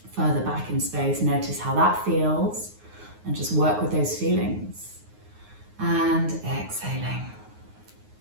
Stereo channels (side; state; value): left; late; 9.5 ms